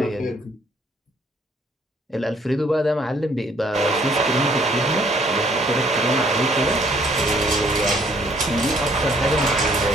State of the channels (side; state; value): both; normal; correlation 0.63